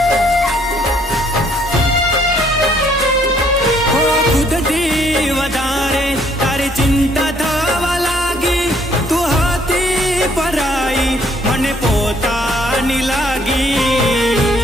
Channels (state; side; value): normal; both; correlation 0.65